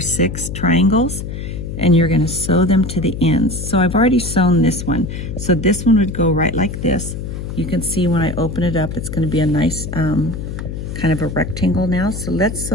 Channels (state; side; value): noise; left; hum, 7 dB below the sound